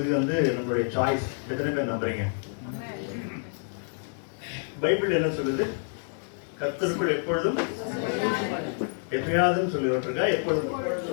நம்மளுடைய சாய்ஸ். எத்தனை பேர் நம்புறீங்க? பைபிள் என்ன சொல்லுது? கர்த்தருக்குள் எப்பொழுதும் எப்பயாவது சொல்லி விட்டுருக்கா. எப்பொழுதும்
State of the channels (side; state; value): right; silent; 59 dB below the other